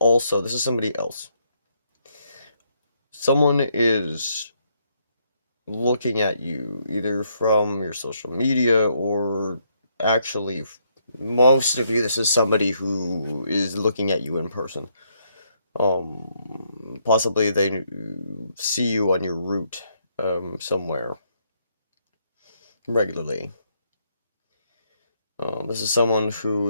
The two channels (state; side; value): inverted; both; correlation -0.74